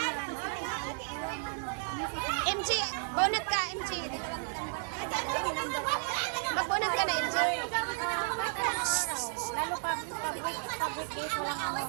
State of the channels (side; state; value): left; silent; 56 dB below the other